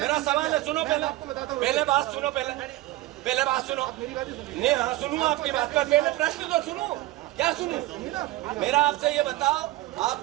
सुनो पहले बात सुनो, पहले बात सुनो। नहीं हाँ सुनूं आपकी बात पर, पहले प्रश्न तो सुनूं। क्या सुनूं? मेरा आपसे ये बताओ,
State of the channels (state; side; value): quieter; left; 17.3 dB